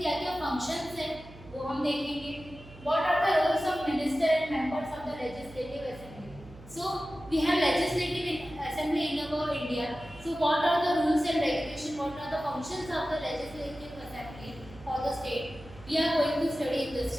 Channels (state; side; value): noise; right; hum, 19 dB below the sound